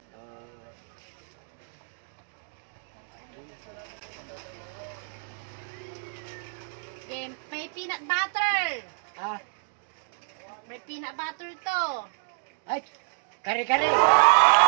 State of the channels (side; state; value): left; silent; digital silence